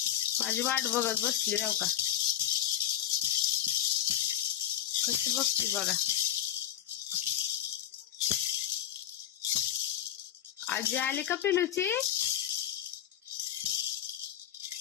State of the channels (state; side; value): quieter; right; 11.3 dB